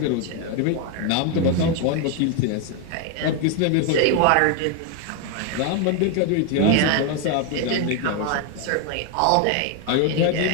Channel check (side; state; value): both; different; correlation 0.01